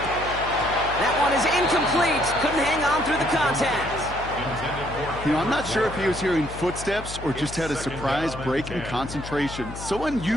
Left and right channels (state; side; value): noise; left; hum, 11 dB below the sound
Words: That one is incomplete. Couldn't hang on through the contact. You know, I'm not sure if he was hearing footsteps or just had a surprise break in concentration. So